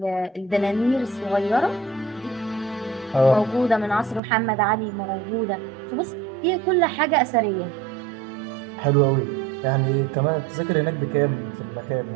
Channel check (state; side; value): drops out; left; at 4.2 s